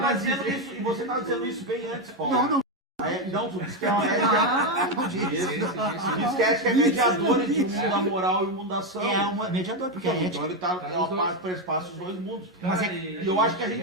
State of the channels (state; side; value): normal; both; correlation 0.08